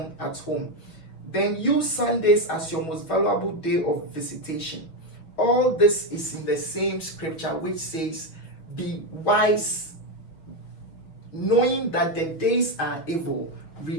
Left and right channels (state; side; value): late; right; 6.0 ms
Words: at home. Then use Sundays as your most valuable day of visitation. All this is in the same scripture which says, be wise, knowing that the days are evil,